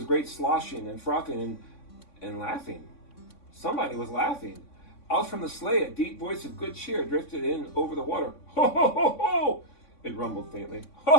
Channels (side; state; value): right; late; 3.6 ms